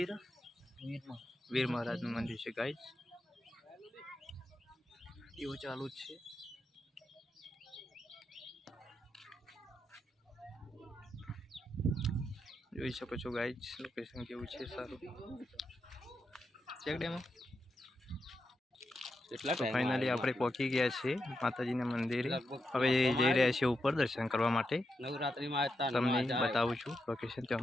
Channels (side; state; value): both; normal; correlation 0.85